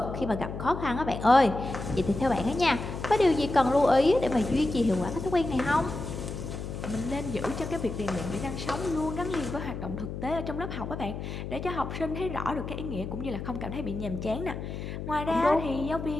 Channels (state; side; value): noise; left; hum, 7 dB below the sound